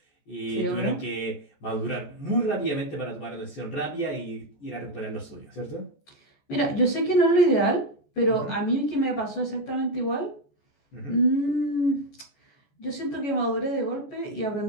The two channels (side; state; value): right; late; 14 ms